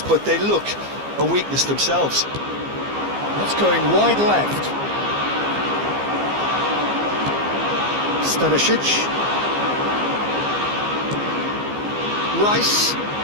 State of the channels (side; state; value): left; late; 15 ms